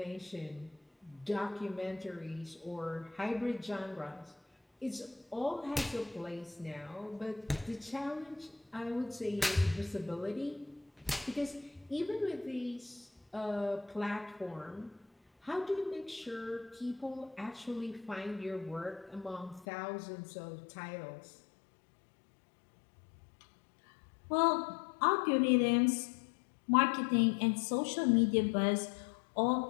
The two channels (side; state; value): right; drops out; at 19.7 s